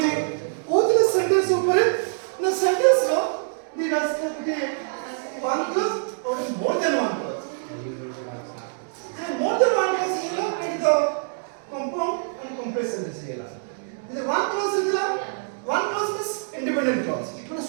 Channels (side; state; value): left; silent; digital silence